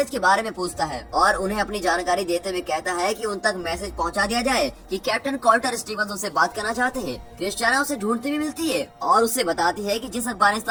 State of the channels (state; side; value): identical; both; correlation 1.00